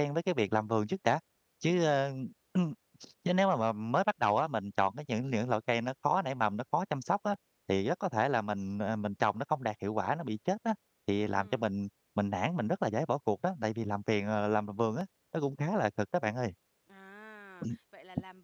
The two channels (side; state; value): both; identical; correlation 1.00